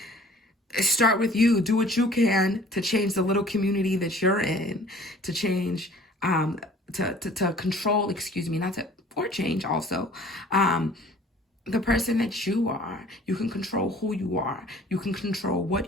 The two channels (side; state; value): both; normal; correlation 0.51